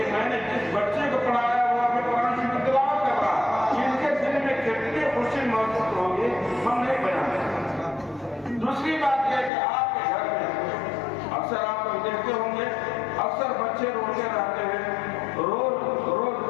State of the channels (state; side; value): drops out; right; at 9.5 s